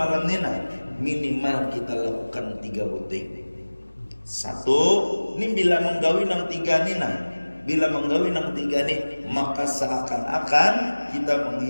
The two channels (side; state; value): both; inverted; correlation -1.00